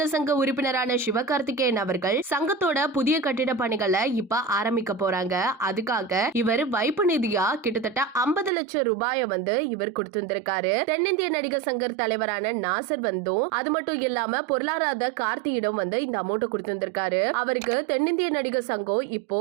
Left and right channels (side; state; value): left; drops out; at 8.5 s